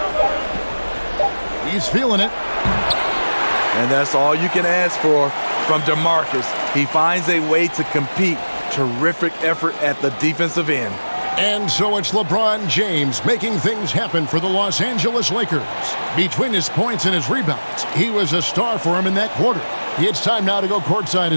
He's feeling it. And that's all you can ask for from DeMarcus. He finds a way to compete. Terrific effort at the defensive end. And so it's LeBron James making things happen for the Los Angeles Lakers. Between his points and his rebounds, he was a star for him in that quarter. It's time now to go courtside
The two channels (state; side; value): inverted; both; correlation -1.00